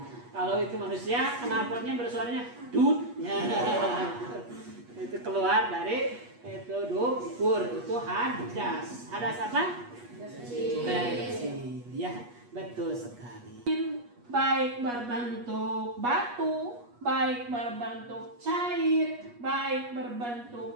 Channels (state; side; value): late; left; 8.3 ms